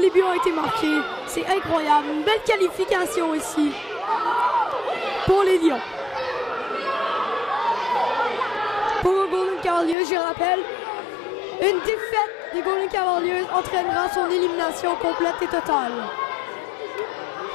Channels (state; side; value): drops out; right; at 10.0 s